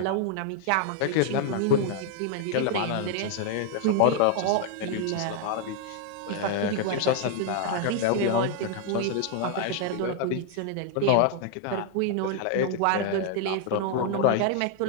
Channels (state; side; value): different; both; correlation 0.00